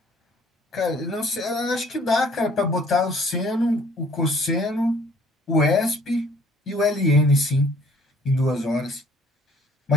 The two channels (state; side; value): normal; both; correlation 0.57